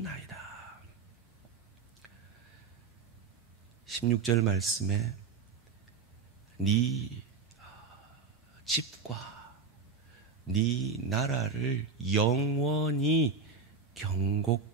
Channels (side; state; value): left; quieter; 4.9 dB